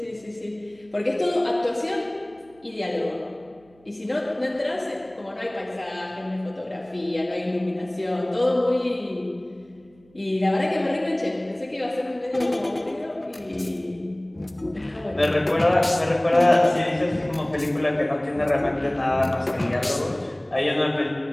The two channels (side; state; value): right; noise; hum, 30 dB below the sound